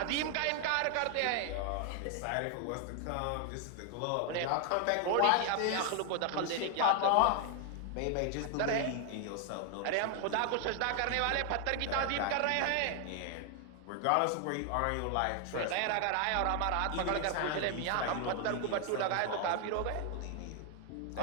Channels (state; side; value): different; both; correlation 0.00